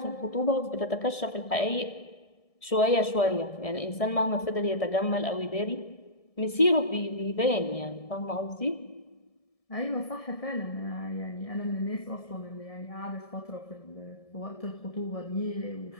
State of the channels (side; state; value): right; late; 1.7 ms